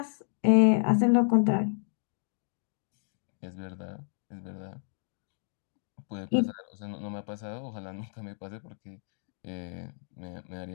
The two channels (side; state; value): right; silent; 57 dB below the other